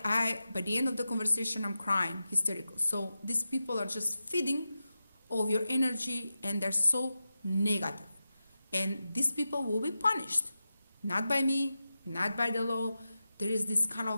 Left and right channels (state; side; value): inverted; both; correlation -0.92